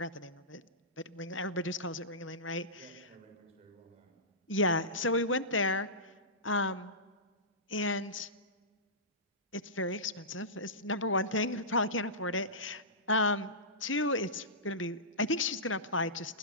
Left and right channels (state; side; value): normal; both; correlation -0.19